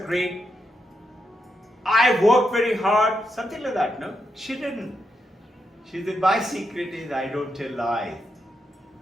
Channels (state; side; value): normal; both; correlation 0.83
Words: great. I work very hard. Something like that, no? She didn't. She said, my secret is I don't tell lies.